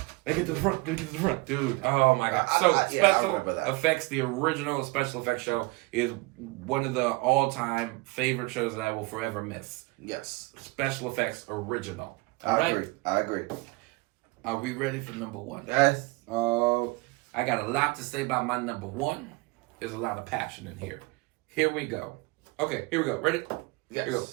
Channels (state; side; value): quieter; left; 24.7 dB